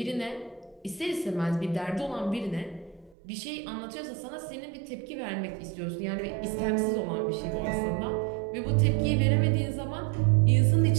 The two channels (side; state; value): left; drops out; at 3.2 s